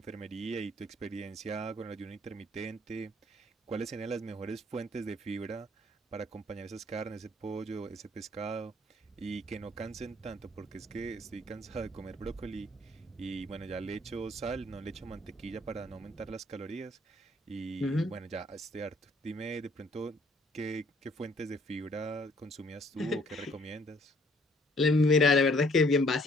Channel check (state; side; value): normal; both; correlation 0.62